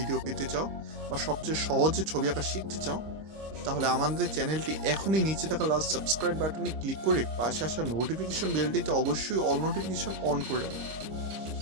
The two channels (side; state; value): left; late; 26 ms